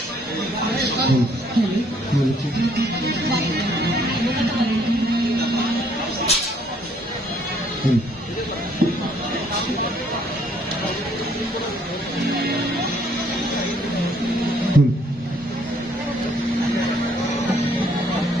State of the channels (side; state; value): both; normal; correlation 0.65